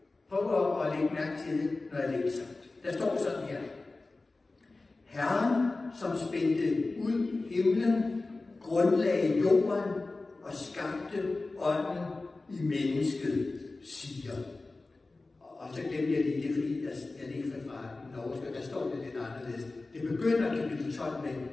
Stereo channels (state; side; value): quieter; right; 3.4 dB